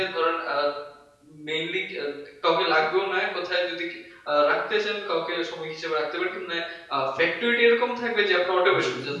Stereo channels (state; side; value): identical; both; correlation 1.00